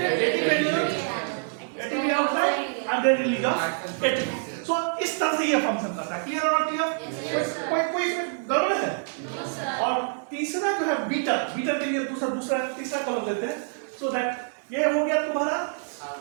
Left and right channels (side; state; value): left; silent; digital silence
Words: ATP outside and then release of ATP। So इस तरह से ये फंक्शन करता है। क्लियर और क्लियर? कोई इसमें गड़बड़ है? और तीसरा जो है बीटर, बीटर के लिए दूसरा तीसरा कलर लेते हैं। सो दैट ये हो गया तुम्हारा